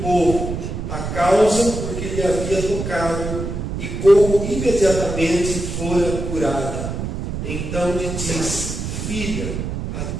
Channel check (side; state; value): right; noise; rumble, 4 dB below the sound